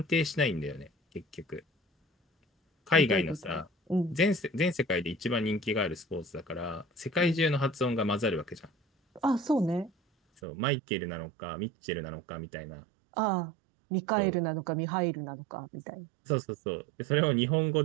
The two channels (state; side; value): drops out; left; at 10.4 s